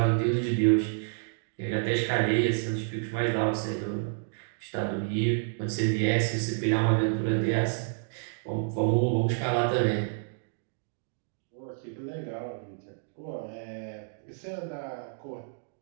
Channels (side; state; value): left; silent; digital silence